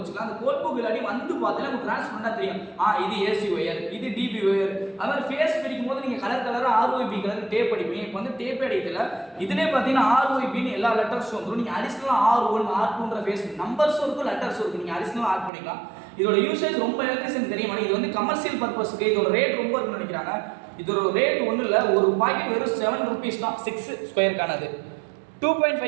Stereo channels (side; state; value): left; drops out; at 15.5 s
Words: அந்த கோட் புக் இல்லாட்டி வந்து பார்த்தீங்கன்னா உங்களுக்கு ட்ரான்ஸ்ஃபர் பண்ணால் தெரியும். இது ஏசி ஒயர், இது டிபி ஒயர். அது மாதிரி ஃபேஸ் பிரிக்கும் போது நீங்கள் கலர் கலராக RYB கலர் டேப் அடிப்பீங்க. இப்போ வந்து டேப் அடிக்கல, இதுலேயே பார்த்தீங்கன்னா RYBன்னு எல்லா லெட்டர்ஸும் வந்துடும். நீங்கள் அடிஷனலாக R1 R2ன்ற ஃபேஸ் நம்பர்ஸும் இருக்கும், லெட்டர்ஸும் இருக்கும். நீங்கள் அடிஷனலாக ஆட் பண்ணிக்கலாம். இதோட யூசேஜ் ரொம்ப எலக்ட்ரிஷியன் தெரியும். இது வந்து கமர்ஷியல் பர்பஸ்க்கு இதோட ரேட் ரொம்ப இருக்குன்னு நினைக்கிறாங்க. இதோட ரேட் ஒன்றும் இல்லை, ஒரு பாக்கெட் வெறும் 7 rupees தான். 6 ஸ்கொயருக்கானது,